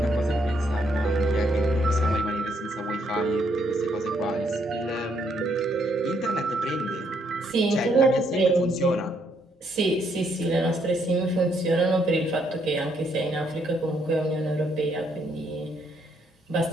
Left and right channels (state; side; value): normal; both; correlation 0.72